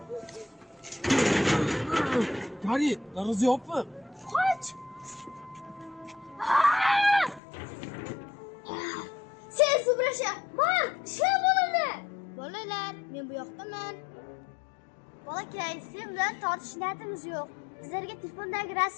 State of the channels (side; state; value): right; drops out; at 7.4 s